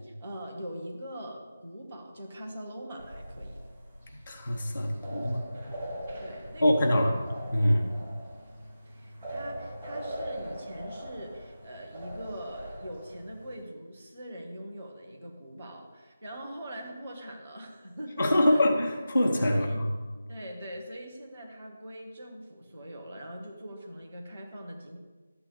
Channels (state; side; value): inverted; both; correlation -0.93